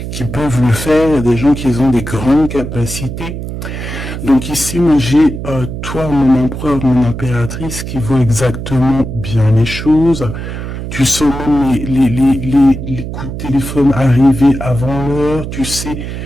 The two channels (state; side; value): noise; right; hum, 7 dB below the sound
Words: peuvent le faire, il y a des gens qui ont des grandes capacités. Donc ici, moi j'ai toi, mon empereur, mon impératrice, qui voit exactement bien les choses. Tu sens même les coups de téléphone arriver avant l'heure. Tu sais,